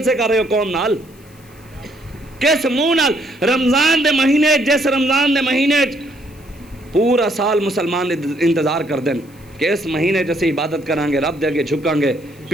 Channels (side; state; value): left; noise; hiss, 28 dB below the sound